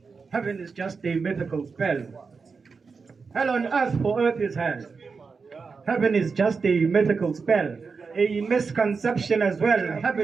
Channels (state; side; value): quieter; left; 4.9 dB